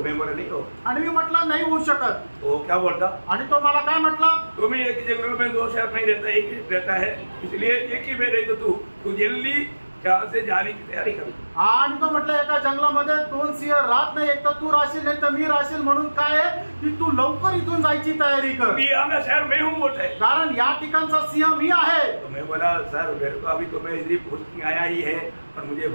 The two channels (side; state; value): both; inverted; correlation -1.00